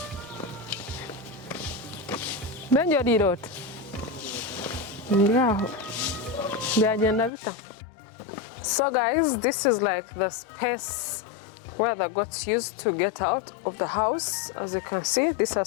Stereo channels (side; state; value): right; drops out; at 7.3 s